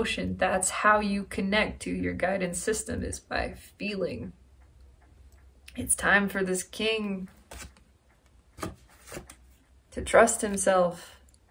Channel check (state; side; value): identical; both; correlation 1.00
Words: That's how you connect to your guidance system, is by feeling. It's time for this king to trust himself,